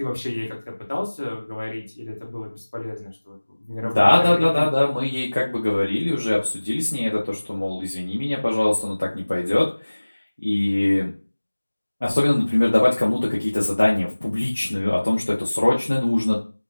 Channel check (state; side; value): inverted; both; correlation -1.00